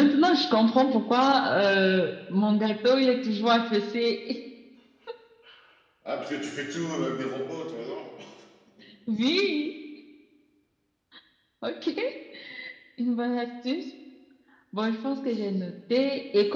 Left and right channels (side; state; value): both; identical; correlation 1.00